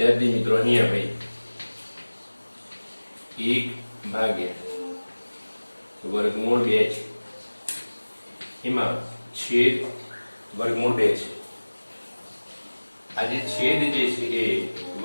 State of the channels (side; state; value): both; inverted; correlation -1.00